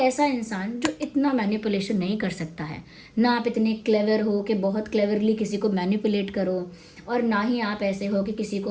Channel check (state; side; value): identical; both; correlation 1.00